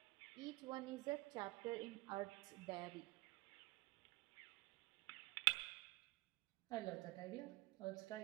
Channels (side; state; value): left; quieter; 21.7 dB